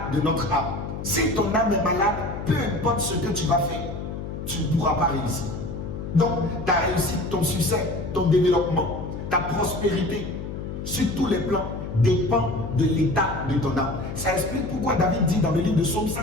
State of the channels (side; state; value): left; noise; hum, 7 dB below the sound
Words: de notre âme? Si ton âme est malade, peu importe ce que tu vas faire, tu ne pourras pas réussir. Donc ta réussite, ton succès, ton développement, ta prospérité sur tous les plans dépend de l'état de ton âme. Ça explique pourquoi David dit dans le livre de Psaume